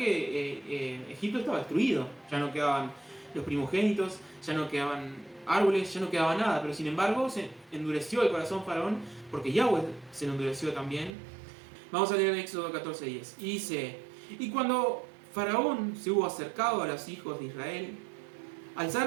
Egipto estaba destruido, ya no quedaban los primogénitos, ya no quedaban árboles, ya no quedaba nada, pero sin embargo se endureció el corazón faraón, porque Yahweh se lo endureció también. Vamos a leer en Éxodo 14:10. Y dice, y cuando Faraón se hubo acercado a los hijos de Israel,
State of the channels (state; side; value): drops out; left; at 11.1 s